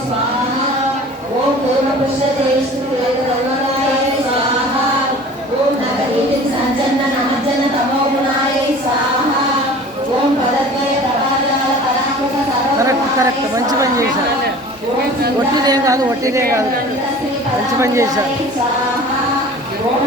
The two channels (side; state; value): both; normal; correlation 0.43